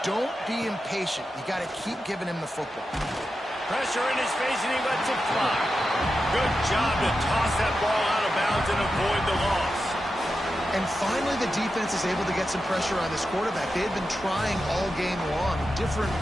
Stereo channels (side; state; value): both; normal; correlation 0.90